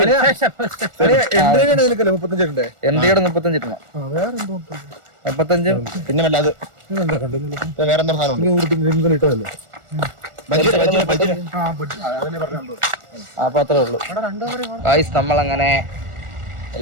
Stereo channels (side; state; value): left; late; 1.4 ms